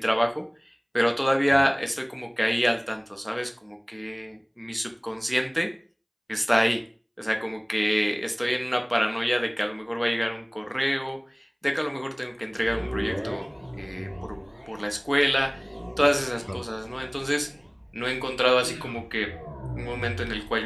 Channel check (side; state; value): both; identical; correlation 1.00